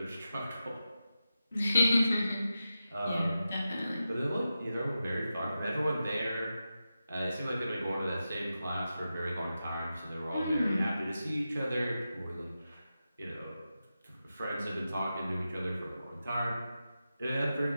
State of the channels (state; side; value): inverted; both; correlation -0.91